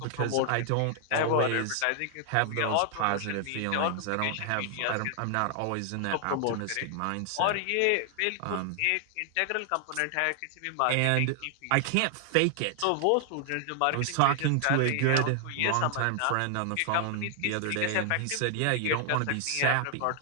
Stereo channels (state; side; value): different; both; correlation 0.00